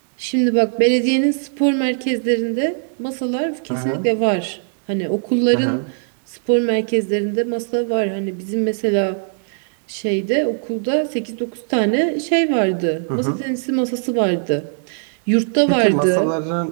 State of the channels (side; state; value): left; silent; digital silence